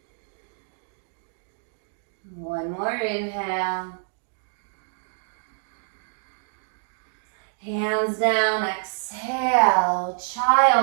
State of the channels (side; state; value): left; silent; digital silence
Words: One more inhale. Hands down, exhale,